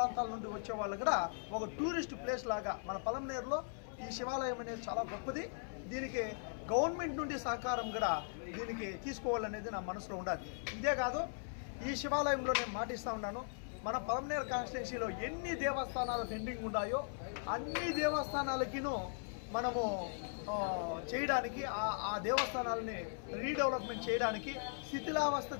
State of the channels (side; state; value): right; silent; 52 dB below the other